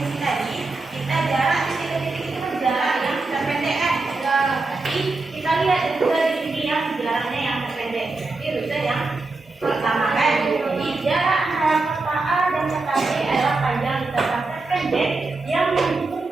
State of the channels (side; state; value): left; quieter; 3.5 dB